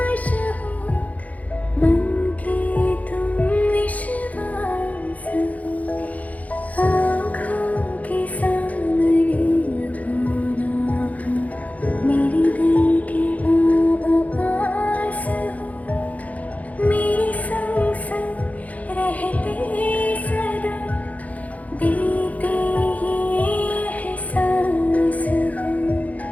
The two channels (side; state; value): right; late; 0.072 ms